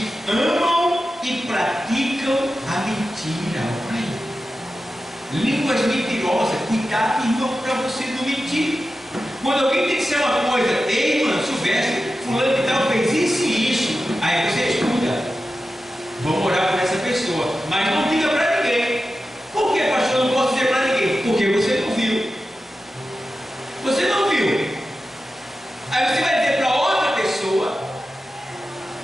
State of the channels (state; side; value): normal; both; correlation 0.92